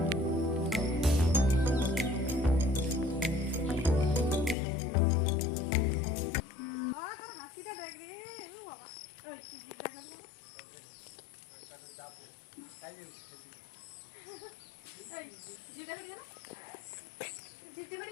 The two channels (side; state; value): right; drops out; at 4.5 s